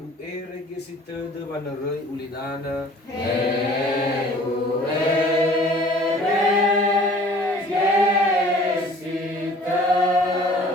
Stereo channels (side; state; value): both; normal; correlation 0.50